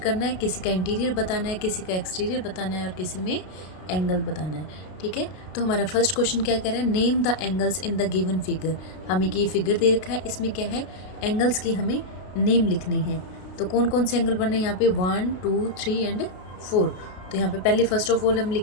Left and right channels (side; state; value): right; late; 33 ms